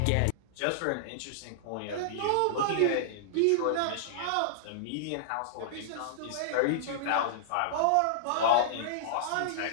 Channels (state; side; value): different; both; correlation -0.01